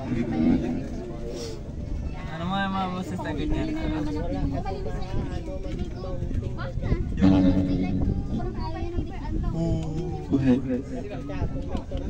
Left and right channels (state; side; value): identical; both; correlation 1.00